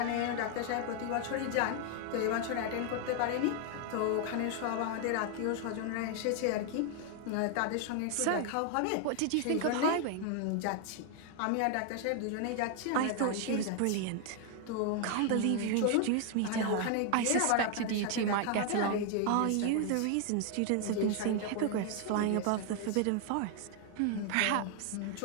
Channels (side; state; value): both; different; correlation 0.00